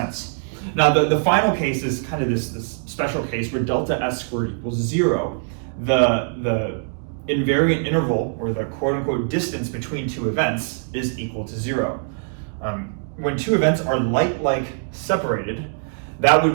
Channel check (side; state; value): left; silent; digital silence